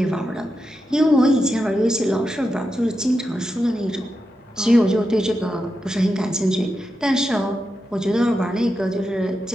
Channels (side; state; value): both; normal; correlation 0.88